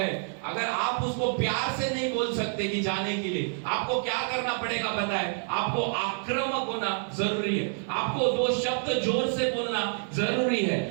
अगर आप उसको प्यार से नहीं बोल सकते कि जाने के लिए, आपको क्या करना पड़ेगा पता है, आपको आक्रामक होना जरूरी है। आपको दो शब्द जोर से बोलना जरूरी है,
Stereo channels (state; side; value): silent; left; 59 dB below the other